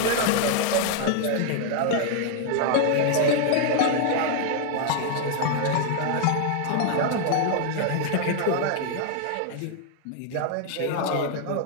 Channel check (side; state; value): both; different; correlation 0.00